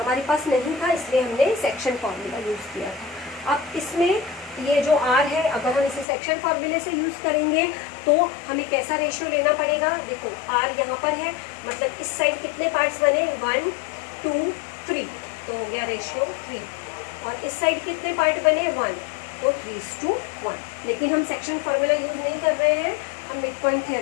पास नहीं था इसलिए हमने सेक्शन फॉर्मूला यूज़ किया था। अब इसमें ये जो R है अगर हम इसे सेक्शन फॉर्मूले से यूज़ करेंगे तो हमें कैसा रेशियो लेना पड़ेगा। देखो R यहाँ पर है, मतलब इस साइड कितने पार्ट्स बने, 1 2 3, तो हो गया रेशियो 3। और इस साइड कितने पार्ट बने, 1, तो 3:1। लेकिन हम सेक्शन फॉर्मूला यूज़ नहीं कर रहे हैं, हम मिड पॉइंट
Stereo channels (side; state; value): right; drops out; at 6.1 s